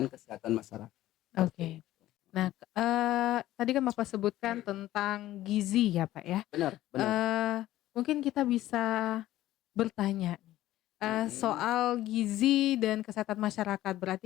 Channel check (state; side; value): quieter; right; 14.7 dB